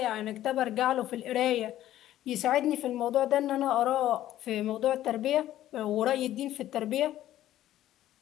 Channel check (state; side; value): quieter; right; 13.2 dB